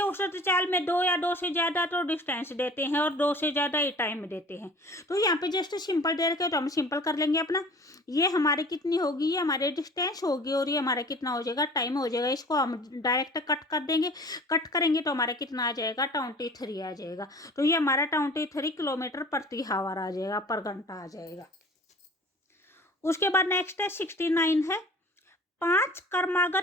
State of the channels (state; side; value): normal; both; correlation 0.45